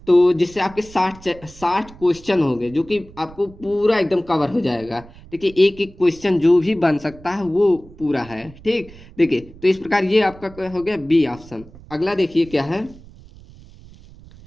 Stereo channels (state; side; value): noise; right; rumble, 21 dB below the sound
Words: तो जिससे आपके 60 क्वेश्चन हो गए जो कि आपको पूरा एकदम कवर हो जाएगा। ठीक है, एक एक क्वेश्चन जो भी बन सकता है वो पूरा है। ठीक, देखिए तो इस प्रकार ये आपका हो गया बी ऑप्शन। अगला देखिए क्या है,